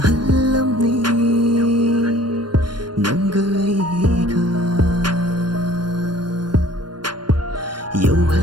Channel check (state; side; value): late; left; 0.71 ms